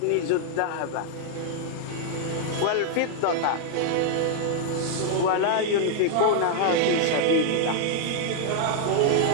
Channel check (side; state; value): both; different; correlation 0.00